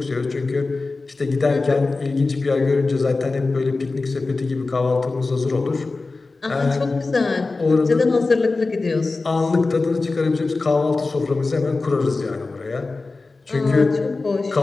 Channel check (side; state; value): right; quieter; 3.7 dB